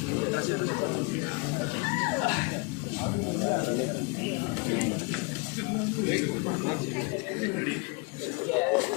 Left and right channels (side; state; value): right; quieter; 30.4 dB